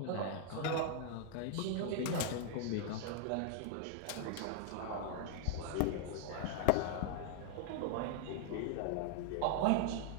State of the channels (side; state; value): both; different; correlation 0.00